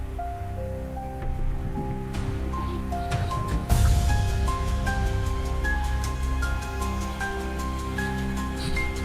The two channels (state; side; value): identical; both; correlation 1.00